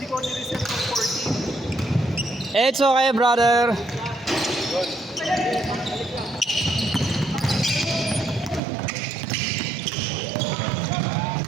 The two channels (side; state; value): left; drops out; at 8.6 s